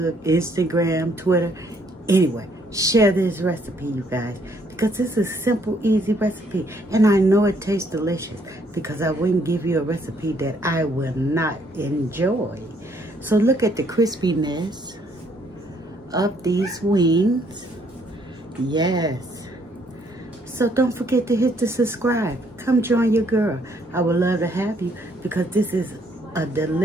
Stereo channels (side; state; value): both; normal; correlation 0.67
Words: Instagram, Twitter. Anyway, share this recipe, you guys, because this is a simple, easy recipe. And I know it tastes delicious because I wouldn't give you a recipe that I will not enjoy. So look at the crispiness of these wings. Yes. So don't forget to hit the subscribe. Come join your girl. I would love to have you because this is a